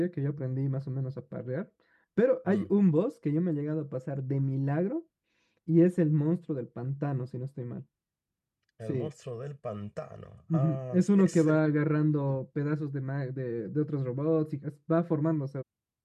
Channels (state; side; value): identical; both; correlation 1.00